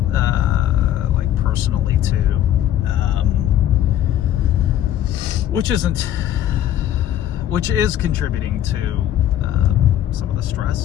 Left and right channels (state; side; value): quieter; right; 11.7 dB